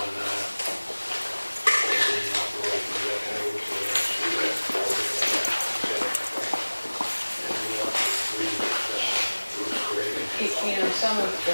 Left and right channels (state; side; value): inverted; both; correlation -1.00